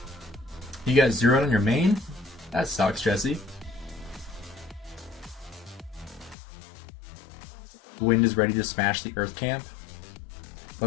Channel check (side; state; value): right; drops out; at 6.4 s